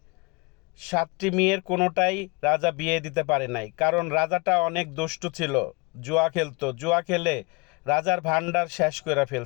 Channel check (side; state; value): right; quieter; 28.2 dB